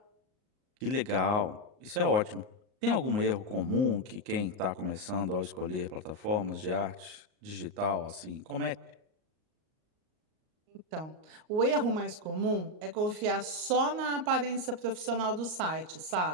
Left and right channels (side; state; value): left; late; 38 ms